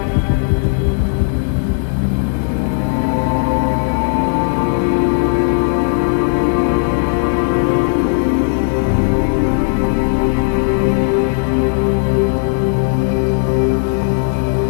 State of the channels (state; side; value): silent; right; digital silence